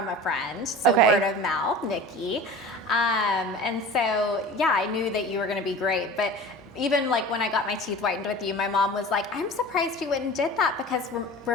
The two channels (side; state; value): both; normal; correlation 0.38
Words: a friend, so word of mouth, Nikki. And so, yeah, I knew that you were going to be great. But even like when I got my teeth whitened with you, my mom was like, I'm surprised you went and did that because